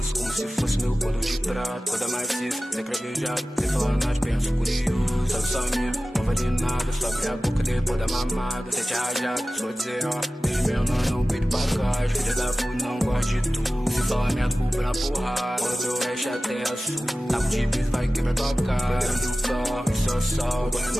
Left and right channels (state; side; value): normal; both; correlation 0.96